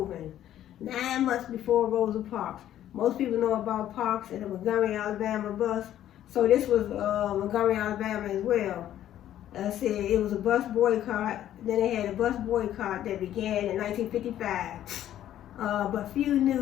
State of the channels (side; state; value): right; quieter; 11.9 dB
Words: 9 months before Rosa Parks. Most people know about Parks and the Montgomery, Alabama bus. So this was Montgomery, Alabama as well. said it was a bus boycott. Then they had a bus boycott that began in 1955. But few